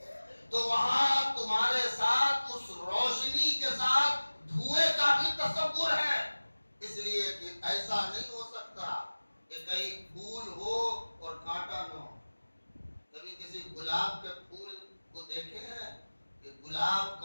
تو وہاں تمہارے ساتھ اس روشنی کے ساتھ دھوئے کا بھی تصور ہے. اس لیے کہ ایسا نہیں ہو سکتا کہ کہیں پھول ہو اور کانٹا نہ ہو. کبھی کسی گلاب کے پھول کو دیکھے ہیں کہ گلاب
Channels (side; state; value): both; inverted; correlation -1.00